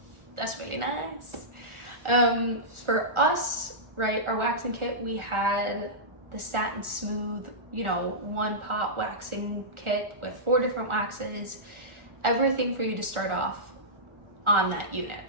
that's really nice. For us, right, our waxing kit, we had the Satin Smooth, one pot waxing kit with 4 different waxes, everything for you to start off on that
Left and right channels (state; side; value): late; left; 1.4 ms